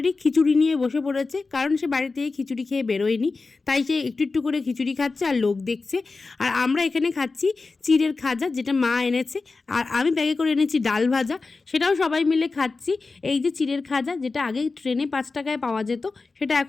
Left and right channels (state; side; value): quieter; right; 4.0 dB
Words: খিচুড়ি নিয়ে বসে পড়েছে। কারণ সে বাড়ি থেকে খিচুড়ি খেয়ে বেরোয়নি, তাই সে একটু একটু করে খিচুড়ি খাচ্ছে আর লোক দেখছে। আর আমরা এখানে খাচ্ছি চিড়ের খাজা, যেটা মা এনেছে। আর আমি ব্যাগে করে এনেছি ডাল ভাজা, সেটাও সবাই মিলে খাচ্ছি। এই যে চিড়ের খাজা, যেটা আগে ট্রেনে 5 টাকায় পাওয়া যেত, সেটা